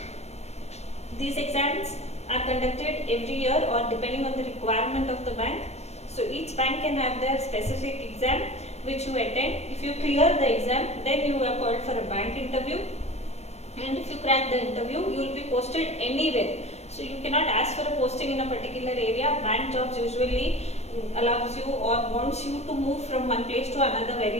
These exams are conducted every year or depending on the requirement of the bank. So each bank can have their specific exam which you attend. If you clear the exam, then you are called for a bank interview. And if you crack the interview, you will be posted anywhere. So you cannot ask for a posting in a particular area. Bank jobs usually allows you or wants you to move from one place to another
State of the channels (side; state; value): right; late; 0.31 ms